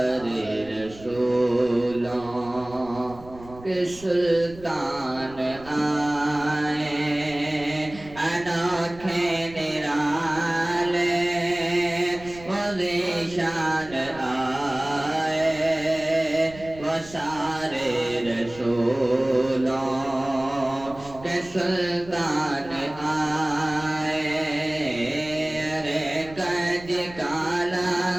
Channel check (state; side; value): noise; right; rumble, 19 dB below the sound